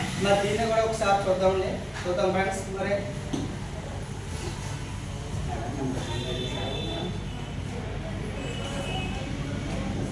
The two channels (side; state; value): both; identical; correlation 1.00